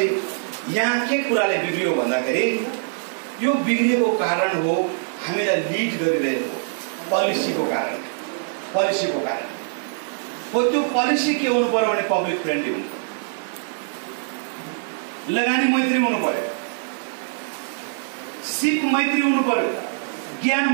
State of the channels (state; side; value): silent; left; digital silence